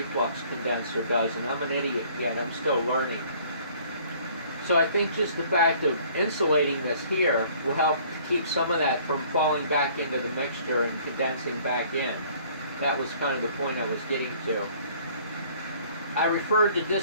condenser does, and I'm an idiot yet, I'm still learning. So I think just the fact of insulating this here will help keep some of that from falling back into the mixture and condensing back in. That was kind of the point I was getting to. I referred to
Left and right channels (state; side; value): inverted; both; correlation -0.56